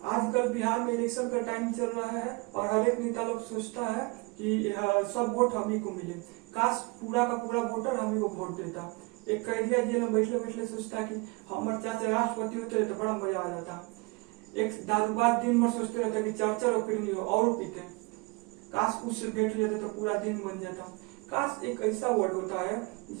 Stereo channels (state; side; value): quieter; left; 27.1 dB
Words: आजकल बिहार में इलेक्शन का टाइम चल रहा है और हर एक नेता लोग सोचता है कि सब वोट हम ही को मिले। काश पूरा का पूरा वोटर हम ही को वोट देता। एक कैदिया जेल में बैठले बैठले सोचता कि हमारे चाचा राष्ट्रपति होते तो बड़ा मजा आ जाता। एक दारूबाज दिन भर सोचते रहता कि चाचा रोकड़ी हो और पीते। काश उससे बैठ लेते तो पूरा दिन बन जाता। काश एक ऐसा वर्ड होता है